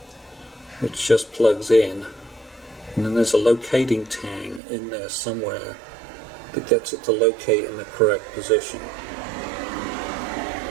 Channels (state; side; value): drops out; left; at 4.6 s